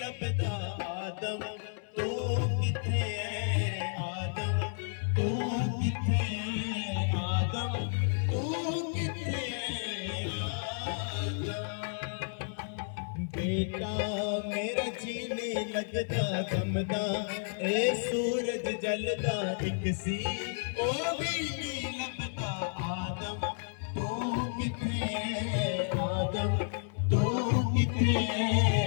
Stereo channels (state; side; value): silent; right; digital silence